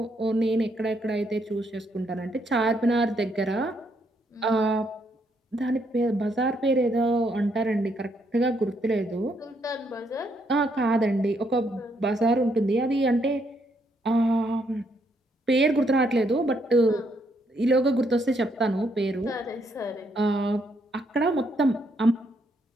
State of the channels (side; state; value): both; normal; correlation 0.74